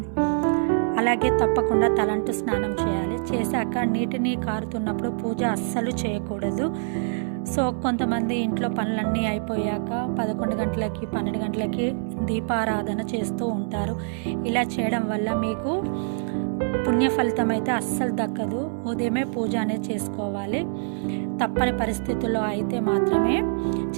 అలాగే తప్పకుండా తలంటు స్నానం చేయాలి. చేశాక నీటిని కారుతున్నప్పుడు పూజ అస్సలు చేయకూడదు. సో కొంతమంది ఇంట్లో పనులన్నీ అయిపోయాక 11 గంటలకి 12 గంటలకి దీపారాధన చేస్తూ ఉంటారు. ఇలా చేయడం వల్ల మీకు పుణ్య ఫలితం అయితే అస్సలు దక్కదు. ఉదయమే పూజ అనేది చేసుకోవాలి. తప్పని పరిస్థితుల్లో అయితే మాత్రమే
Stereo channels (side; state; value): left; silent; digital silence